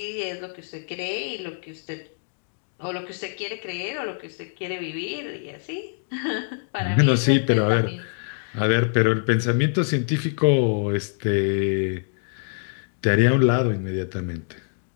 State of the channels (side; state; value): right; silent; digital silence